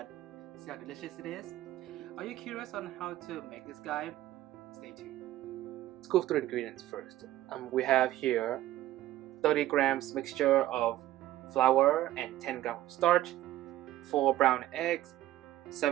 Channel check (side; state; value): left; quieter; 14.6 dB